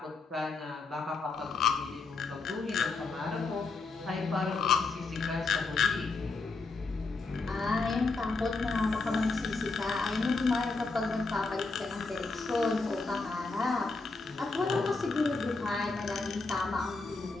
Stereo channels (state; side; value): quieter; right; 3.9 dB